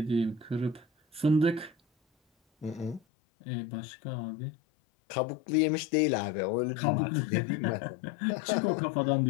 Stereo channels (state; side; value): drops out; right; at 3.0 s